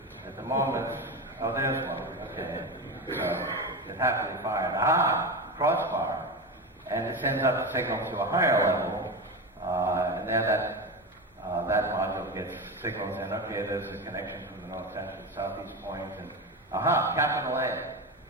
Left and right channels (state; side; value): normal; both; correlation 0.21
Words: At the moment, oh, there's one. Okay. So it happily fired. Ah, crossbar. And it sends up the signal to a higher level, and then that module gets signals in. Okay, there's a connection from the north central to southeast point, and aha, capital A.